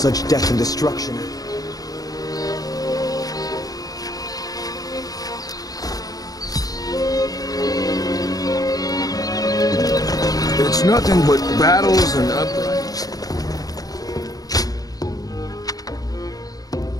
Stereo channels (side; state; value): right; late; 0.18 ms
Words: death and destruction. It's nothing but battles and uprisings.